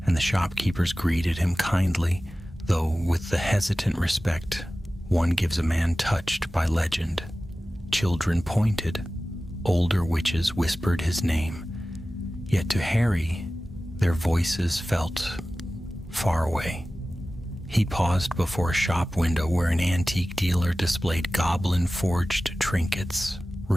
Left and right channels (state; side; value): normal; both; correlation 0.96